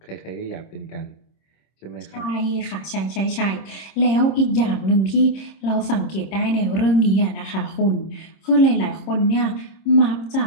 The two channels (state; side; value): late; right; 26 ms